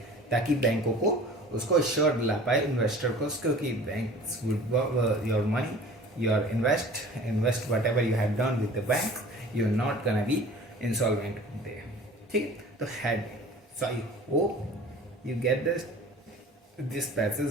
ताकि बैंकों को उसको श्योर दिला पाए इन्वेस्टर को, क्योंकि banks would your money, your invest whatever you have done with the bank, you are not gonna be insolvent there, ठीक है। तो had, so I hope you get this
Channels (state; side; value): normal; both; correlation 0.44